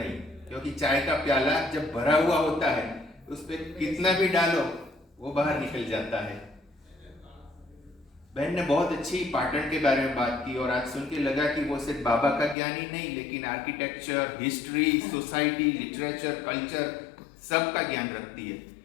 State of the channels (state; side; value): drops out; right; at 12.6 s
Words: क्योंकि चाय का प्याला जब भरा हुआ होता है, उस पर कितना भी डालो वो बाहर निकल जाता है। बहन ने बहुत अच्छी पाटन के बारे में बात की, और आज सुन के लगा कि वो सिर्फ बाबा का ज्ञान ही नहीं, लेकिन architecture, history, society, literature, culture, सब का ज्ञान रखती है।